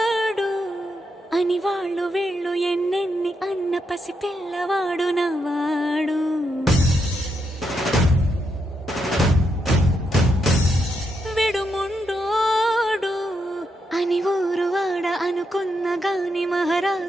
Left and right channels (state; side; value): normal; both; correlation 0.81